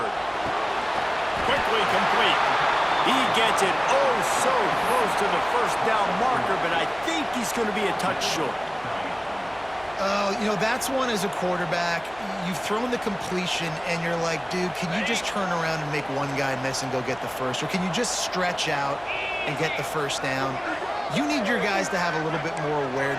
Quickly complete. He gets it oh so close to the first down marker, but I think he's going to be a touch short. You know, that's one as a quarterback. You've thrown the completion, and you're like, dude, can you just turn around and make one guy miss and go get the first? Or can you just stretch out and get the first down? You need your guys to have a little bit more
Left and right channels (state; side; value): noise; left; hum, 26 dB below the sound